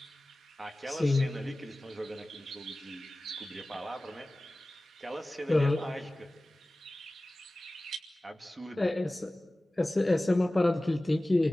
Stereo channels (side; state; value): both; normal; correlation 0.97